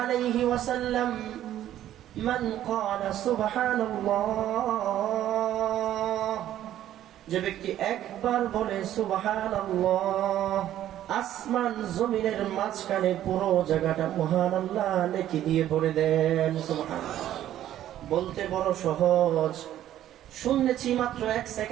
وسلم من قال سبحان الله যে ব্যক্তি একবার বলে সুবহানাল্লাহ, আসমান জমিনের মাঝখানে পুরো জায়গাটা মহান আল্লাহ নেকি দিয়ে ভরে দেন। সুবহানাল্লাহ বলতে বড় সহজ, শুনেছি মাত্র 1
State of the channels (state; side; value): quieter; left; 12.2 dB